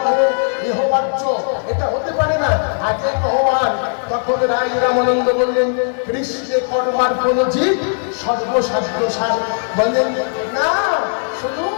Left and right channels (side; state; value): right; silent; 68 dB below the other